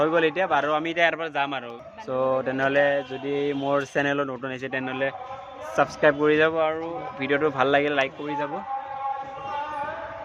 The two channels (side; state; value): both; identical; correlation 1.00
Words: গ'ল এতিয়া আৰু আমি এতিয়া ইয়াৰ পৰা যাম আৰু সো তেনেহ'লে যদি মোৰ চেনেলত নতুন আহিছে তেনেহ'লে ছাবস্ক্ৰাইব কৰি যাব আৰু ভিডিঅ'টো ভাল লাগিলে লাইক কৰি যাব